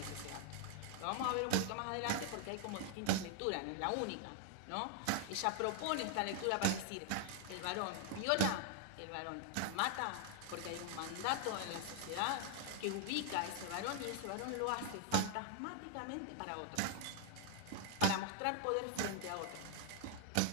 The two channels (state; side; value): different; both; correlation 0.00